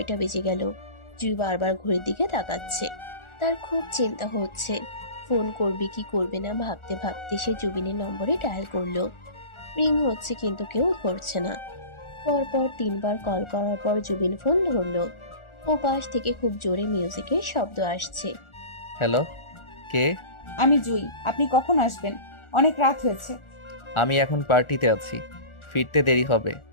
বেজে গেল। জুঁই বারবার ঘড়ির দিকে তাকাচ্ছে। তার খুব চিন্তা হচ্ছে। ফোন করবে কি করবে না ভাবতে ভাবতে সে জুবিনের নম্বরে ডায়াল করলো। রিং হচ্ছে কিন্তু কেউ ধরছে না। পরপর 3বার কল করার পর জুবিন ফোন ধরলো। ও পাশ থেকে খুব জোরে মিউজিকের শব্দ আসছে। হ্যালো, কে? আমি জুই, আপনি কখন আসবেন? অনেক রাত হয়েছে। আমি এখন পার্টিতে আছি, ফিরতে দেরি হবে,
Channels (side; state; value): right; late; 1.4 ms